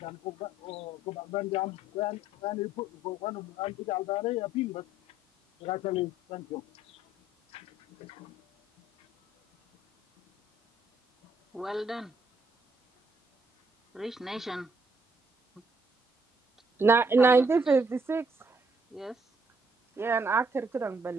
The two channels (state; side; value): normal; both; correlation 0.67